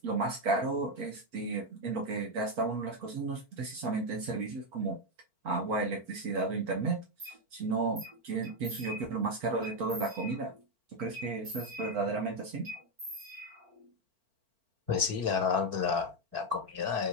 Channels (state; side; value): late; left; 4.4 ms